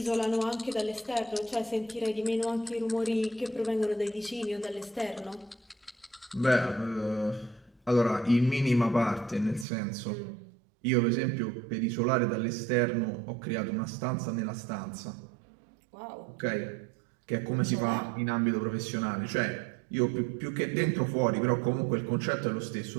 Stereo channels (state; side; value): drops out; left; at 9.7 s